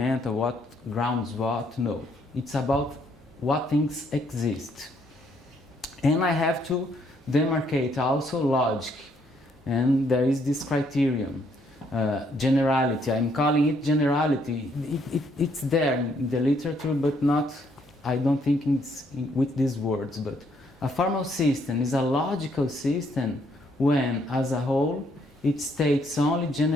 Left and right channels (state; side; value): normal; both; correlation 0.70